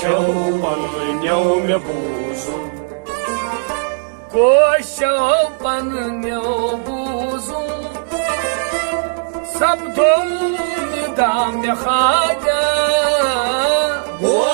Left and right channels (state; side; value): silent; left; digital silence